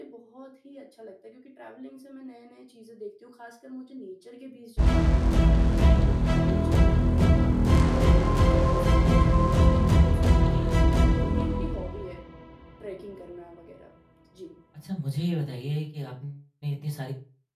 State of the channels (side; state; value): both; identical; correlation 1.00